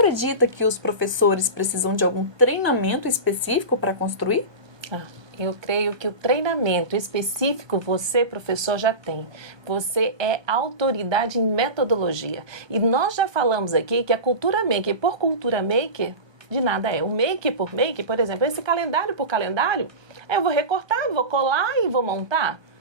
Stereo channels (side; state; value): left; late; 1.2 ms